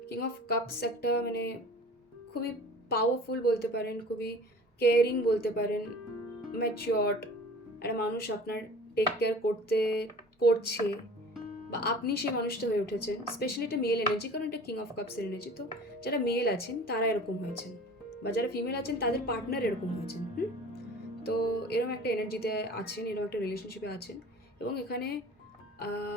কিং অফ কাপস একটা মানে খুবই পাওয়ারফুল বলতে পারেন, খুবই কেয়ারিং বলতে পারেন, ম্যাচিওর্ড একটা মানুষ আপনার টেক কেয়ার করছে, বা আপনি সেই মানুষটা হয়ে উঠেছেন। স্পেশালি এটা মেল এনার্জি, কারণ এটা কিং অফ কাপসের এনার্জি। তো যারা মেল আছেন তারা এরকম হয়েছেন, বা যারা ফিমেল আছেন তাদের পার্টনার এরকম হয়েছেন। তো এরকম একটা এনার্জিতে আছেন, এরকম একটা রিলেশনশিপে আছেন, এবং এখানে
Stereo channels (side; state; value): both; normal; correlation 0.43